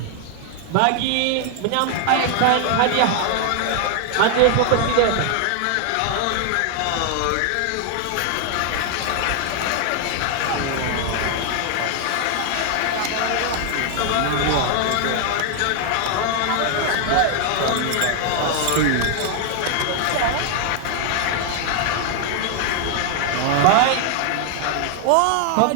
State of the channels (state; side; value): different; both; correlation 0.00